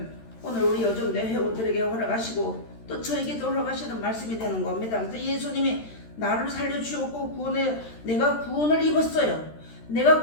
오늘 우리 여전대 회원들에게 허락하시고 또 저에게도 허락하시는 말씀이 되는 겁니다. 그래서 예수님이 나를 살려주셨고 내가 구원을 입었어요. 내가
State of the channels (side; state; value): right; late; 13 ms